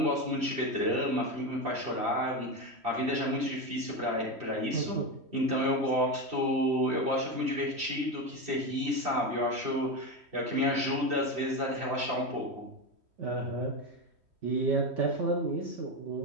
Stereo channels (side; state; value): left; late; 3.1 ms